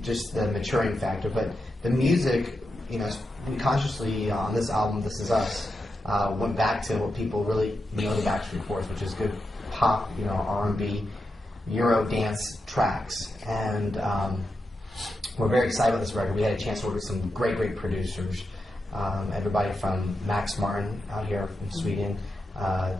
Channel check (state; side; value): normal; both; correlation 0.87